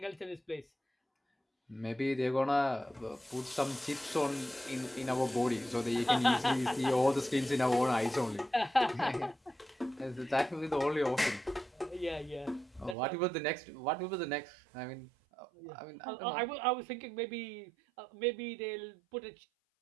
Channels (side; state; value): left; drops out; at 13.0 s